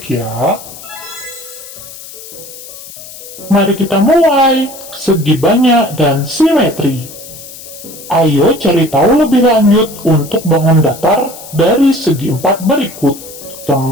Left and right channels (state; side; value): noise; left; hiss, 15 dB below the sound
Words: ya. Mari kita mulai. Segi banyak dan simetri. Ayo cari tahu lebih lanjut untuk bangun datar dari segi 4 berikut.